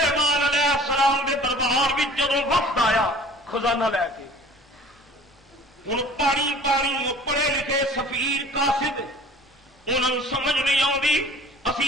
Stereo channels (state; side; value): normal; both; correlation 0.47